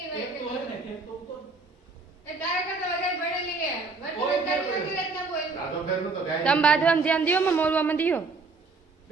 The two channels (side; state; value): left; quieter; 4.0 dB